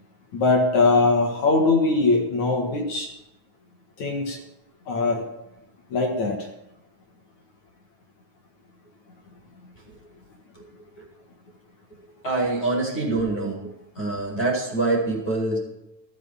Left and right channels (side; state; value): right; late; 9.3 ms